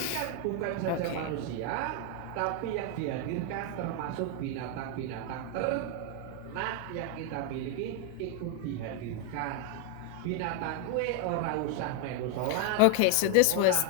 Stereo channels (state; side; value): different; both; correlation 0.01